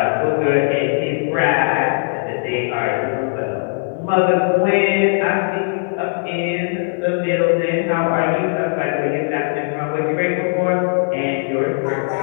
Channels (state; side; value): silent; right; 66 dB below the other